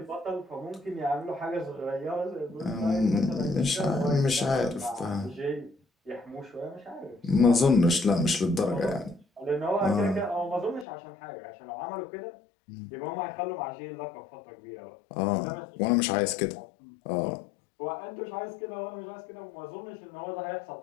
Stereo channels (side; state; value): right; drops out; at 10.9 s